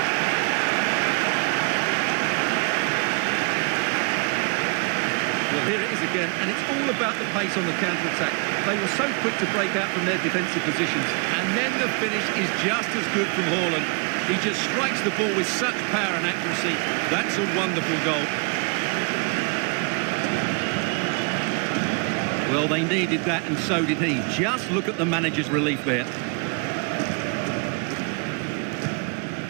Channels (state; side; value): quieter; left; 34.7 dB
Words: Well, here it is again, and it's all about the pace on the counter-attack. They were so quick to break out from their defensive positions. And then the finish is just as good from Haaland. He just strikes the ball with such power and accuracy. That's a wonderful goal. Well, they needed that, and so did he. Just look at the manager's relief there.